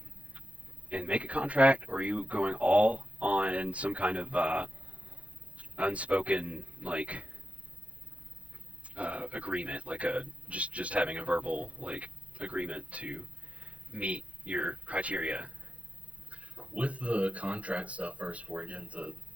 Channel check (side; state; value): left; late; 0.065 ms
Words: make a contract, or are you going all on some kind of unspoken like agreement, like a just having a verbal like agreement to meet your criteria? With the contract stuff first, before I get into